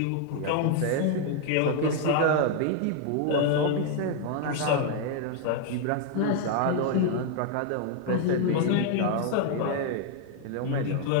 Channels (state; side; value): different; both; correlation 0.00